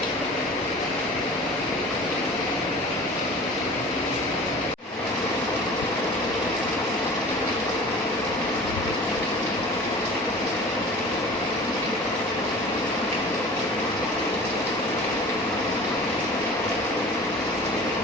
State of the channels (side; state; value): both; normal; correlation 0.41